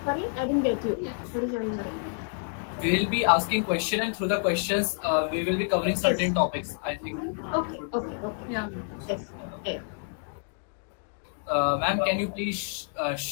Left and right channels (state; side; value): silent; right; 59 dB below the other